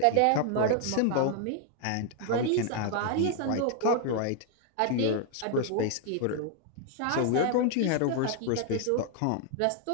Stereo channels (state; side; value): different; both; correlation 0.00